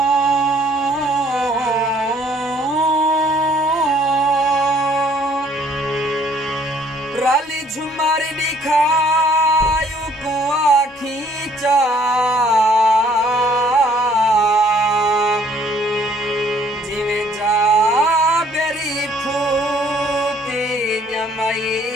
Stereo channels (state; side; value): normal; both; correlation 0.61